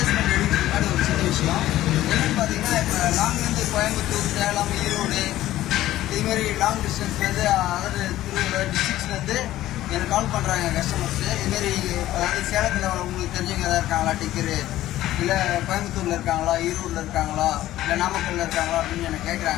பண்ணி எடுக்கிறதுக்கு முன்னாடி ஒரு சின்ன விஷயம் என்னென்னு பார்த்தீங்கன்னா, இப்போ லாங்லேருந்து கோயம்புத்தூர், சேலம், ஈரோடு இதுமாரி லாங் டிஸ்டன்ஸ்லேருந்து அதாவது திருவள்ளூர் டிஸ்ட்ரிக்ஸ்லேருந்து எனக்கு கால் பண்ணுறாங்க கஸ்டமர்ஸு. இதுமாரி அதாவது சேலத்தில் உங்களுக்கு தெரிஞ்சவங்க எதாவது இருக்காங்களா டிக்கரு, இல்லை கோயம்புத்தூரில் இருக்காங்களா, ஈரோடில் இருக்காங்களா, இல்லை நாமக்கல்லில் இருக்காங்களா அப்படின்னு எனக்கு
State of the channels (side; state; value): right; quieter; 14.5 dB